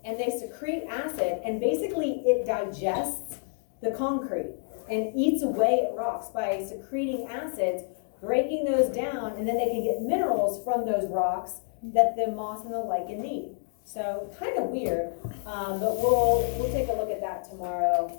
and they secrete acid, and basically it digests the concrete and eats away at rocks by secreting acids, breaking those down, and then they can get minerals from those rocks that the moss and the lichen need. So kind of weird, but we'll take a look at that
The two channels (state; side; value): silent; right; 59 dB below the other